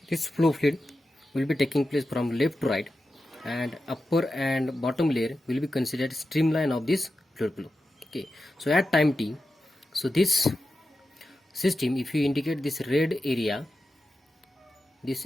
this flow fluid will be taking place from left to right, and upper and bottom layer will be considered streamline of this fluid flow. Okay, so at time t, so this system, if you indicate this red area, this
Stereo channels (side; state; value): both; normal; correlation 0.91